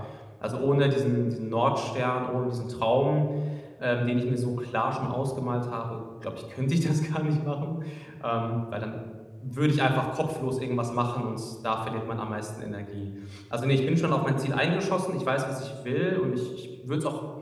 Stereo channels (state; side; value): identical; both; correlation 1.00